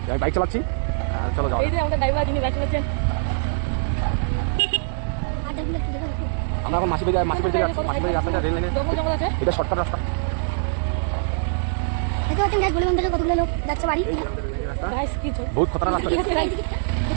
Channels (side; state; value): left; silent; digital silence